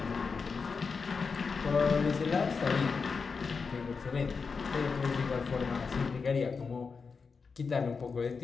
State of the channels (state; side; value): quieter; right; 5.1 dB